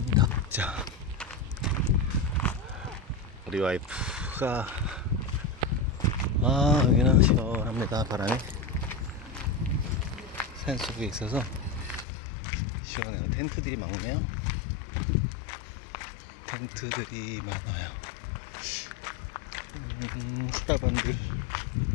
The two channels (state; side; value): drops out; right; at 12.1 s